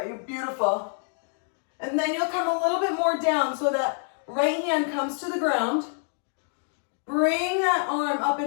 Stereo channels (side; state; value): right; silent; 60 dB below the other